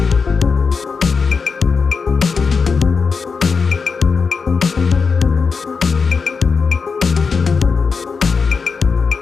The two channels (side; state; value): right; quieter; 5.2 dB